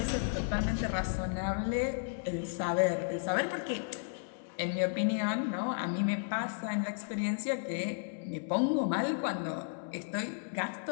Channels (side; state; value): right; silent; digital silence